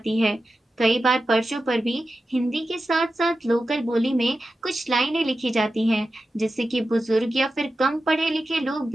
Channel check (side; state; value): both; normal; correlation 0.92